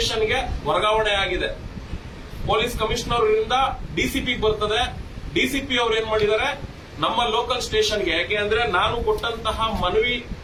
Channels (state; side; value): identical; both; correlation 1.00